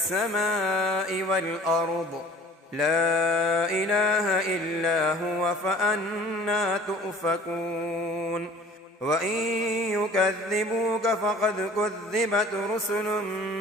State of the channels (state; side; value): normal; both; correlation 0.48